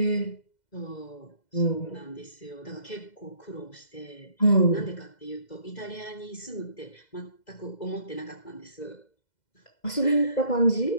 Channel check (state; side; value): late; right; 2.0 ms